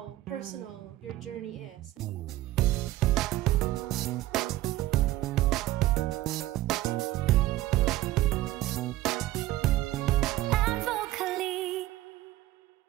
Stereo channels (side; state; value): left; quieter; 15.7 dB